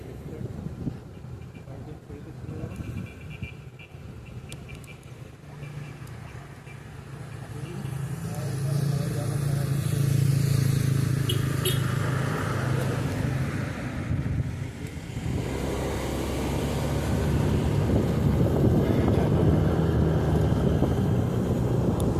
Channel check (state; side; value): identical; both; correlation 1.00